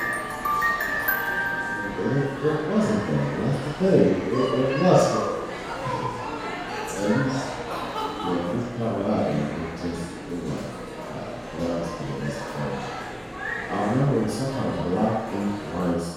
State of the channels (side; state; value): both; identical; correlation 1.00